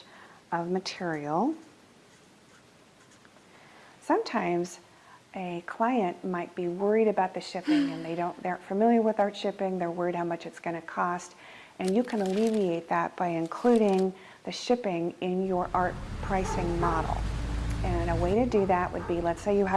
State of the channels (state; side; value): identical; both; correlation 1.00